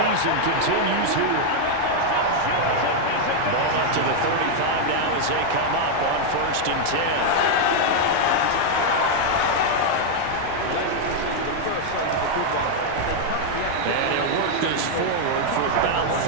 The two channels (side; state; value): both; different; correlation 0.00